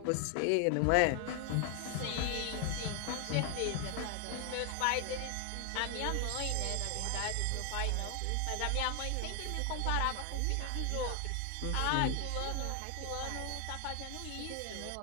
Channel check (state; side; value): different; both; correlation 0.00